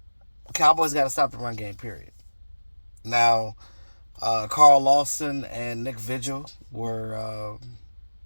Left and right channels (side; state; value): both; inverted; correlation -1.00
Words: Cowboys got to stop the run game. Period. Now, Carl Lawson and Nick Vigil were